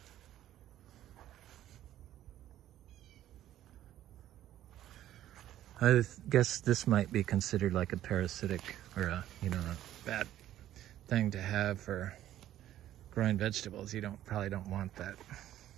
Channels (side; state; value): left; quieter; 12.7 dB